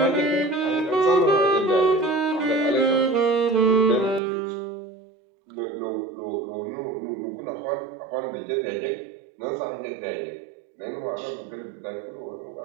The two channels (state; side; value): drops out; left; at 4.2 s